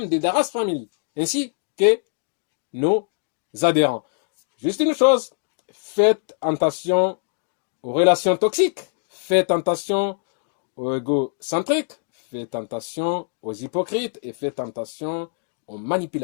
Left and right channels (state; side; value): silent; right; digital silence